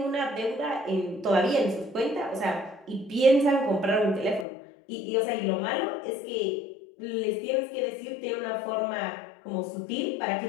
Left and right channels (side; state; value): right; drops out; at 4.5 s